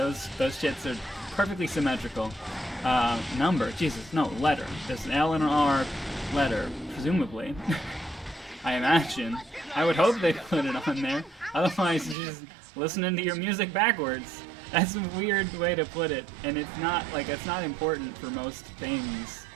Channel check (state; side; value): drops out; left; at 12.2 s